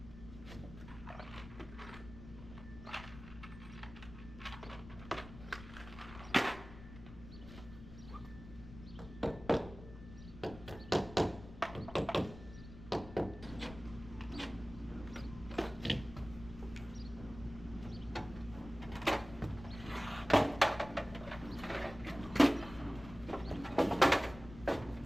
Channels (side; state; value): left; noise; rumble, 14 dB below the sound